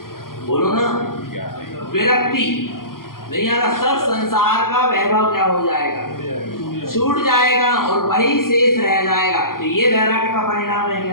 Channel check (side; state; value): right; late; 0.92 ms